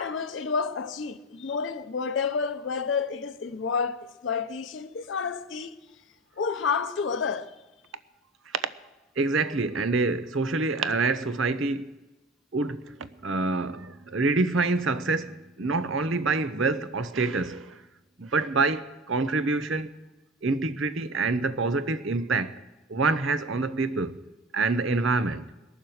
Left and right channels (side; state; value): both; normal; correlation 0.32